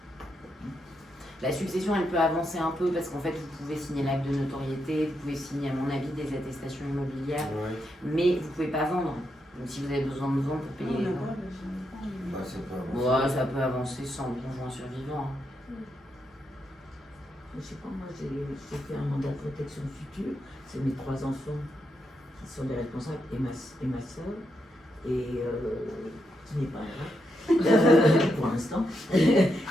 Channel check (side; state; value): both; normal; correlation 0.82